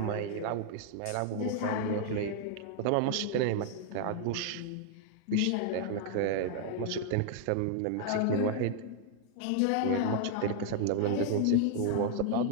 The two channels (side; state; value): both; different; correlation 0.00